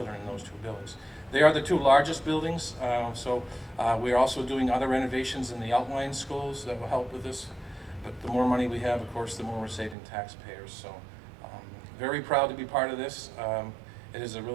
in those two buildings. They are the two largest buildings, so we're also doing other renovations in the outlying schools that will help with this. But the more money we have, of course, the more we're saving taxpayers. So very proud to be part of this. It is a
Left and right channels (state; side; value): drops out; left; at 10.0 s